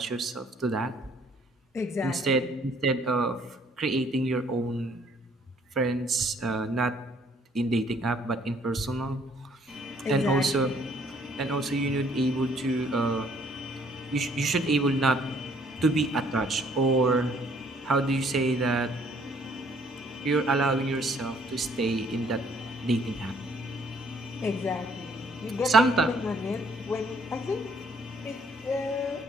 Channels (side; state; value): both; normal; correlation 0.62